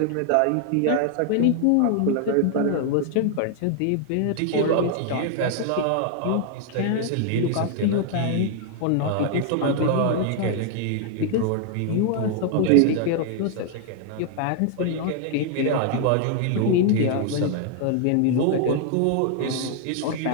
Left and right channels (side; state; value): both; different; correlation 0.00